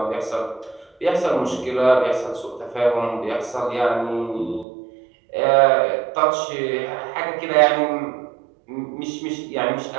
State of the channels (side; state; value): left; drops out; at 4.7 s